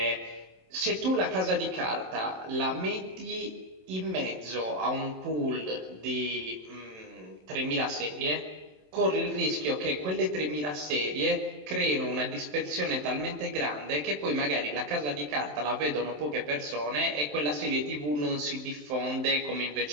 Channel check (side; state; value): left; late; 27 ms